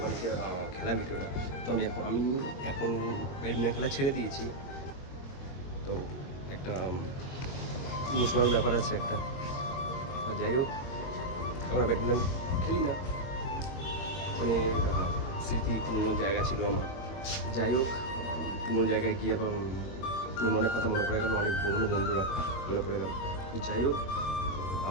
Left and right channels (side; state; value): right; late; 22 ms